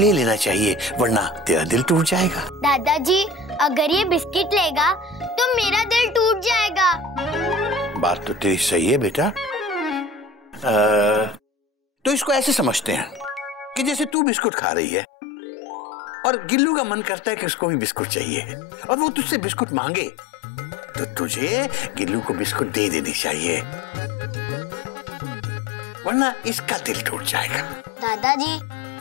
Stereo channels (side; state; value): right; drops out; at 14.2 s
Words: लेना चाहिए, वरना तेरा दिल टूट जाएगा। दादाजी, अगर ये बिस्किट लेगा तो मेरा दिल टूट जाएगा। बात तो तेरी सही है बेटा। तो इसको ऐसे समझते हैं कि जैसे तू बिस्कुट खा रही है और गिल्लू का मन करता है कि उसको भी बिस्कुट चाहिए और वो तुझसे बिस्कुट मांगे, तो तुझे गिल्लू को बिस्कुट दे देनी चाहिए, वरना इसका दिल टूट जाएगा। दादाजी,